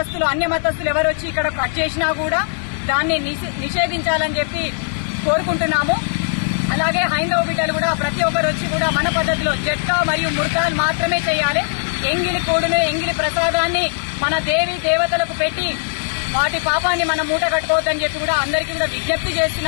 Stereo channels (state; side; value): silent; right; 57 dB below the other